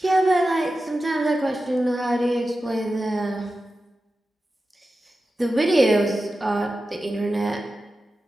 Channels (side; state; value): both; normal; correlation 0.93